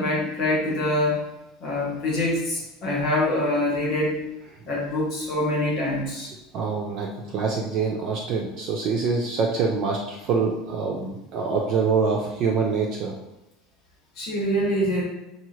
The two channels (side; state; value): both; normal; correlation 0.32